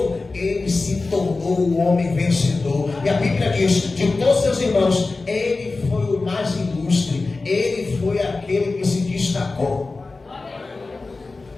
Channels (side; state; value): right; quieter; 3.6 dB